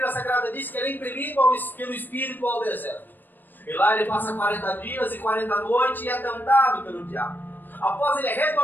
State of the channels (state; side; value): late; right; 0.091 ms